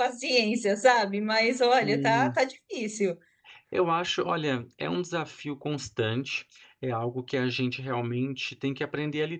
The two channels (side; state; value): both; identical; correlation 1.00